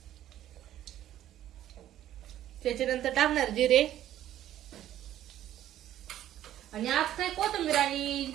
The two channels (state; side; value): quieter; left; 12.3 dB